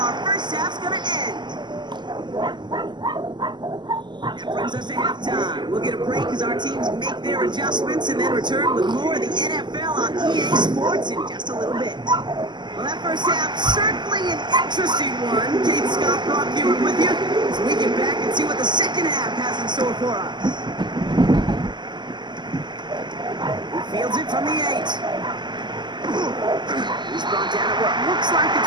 our first half's going to end. That brings us to halftime. We'll get a break as our teams make their adjustments and then return with more of the NFL on EA Sports in just a little bit. Well, that first half, certainly an interesting one. Kate Scott, Brock Hewitt with you as we get back and see what the second half has in store for us. He fields it from the 8. He's brought down at what looks like the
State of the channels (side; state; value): left; late; 0.21 ms